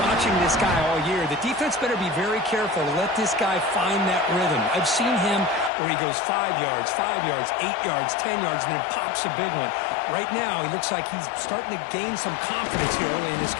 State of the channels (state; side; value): drops out; right; at 5.7 s